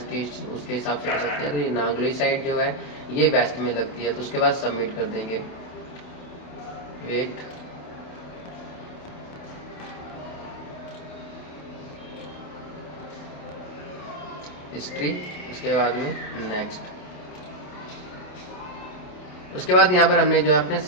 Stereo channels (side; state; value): right; late; 28 ms